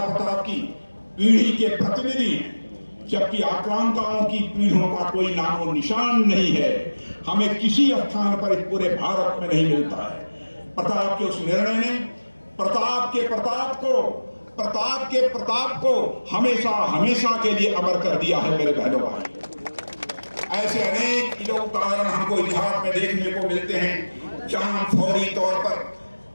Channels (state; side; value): inverted; both; correlation -1.00